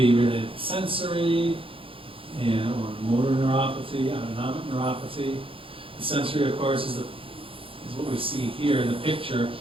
related to sensory or motor neuropathy, autonomic neuropathy. The sensory, of course, is what we see here in the picture.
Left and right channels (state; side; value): late; left; 0.26 ms